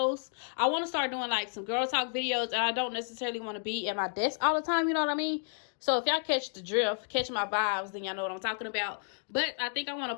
I want to start doing like some girl talk videos, and I don't necessarily want to be at my desk all the time, you know what I mean? So if y'all catch the drift, catch my vibes, then y'all know what I'm talking about. But I think I want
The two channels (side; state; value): right; silent; digital silence